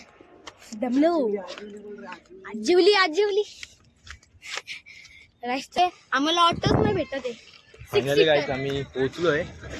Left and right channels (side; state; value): both; identical; correlation 1.00